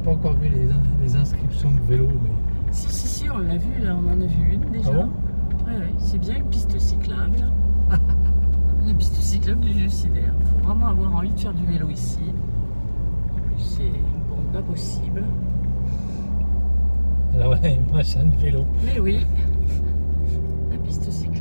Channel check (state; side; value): inverted; both; correlation -1.00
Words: encore vu les inscriptions de vélo, mais... Si, on l'a vu, là, on en a vu une déjà. Ah bon? Ouais, c'est bien une piste cyclable. La piste cyclable du suicidaire. Il faut vraiment avoir envie de faire du vélo ici. En plus, c'est bon, pas possible. Ah ouais, moi j'ai un vélo. Mais oui, la piste